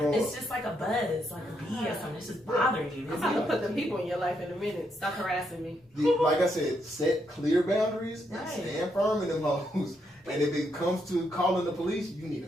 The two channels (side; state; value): both; normal; correlation 0.78